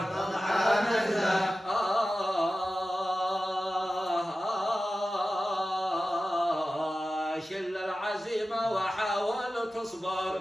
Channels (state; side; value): normal; both; correlation 0.94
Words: شل العزيمة وحاول